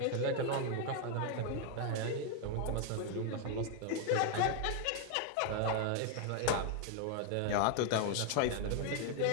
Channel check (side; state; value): both; different; correlation 0.00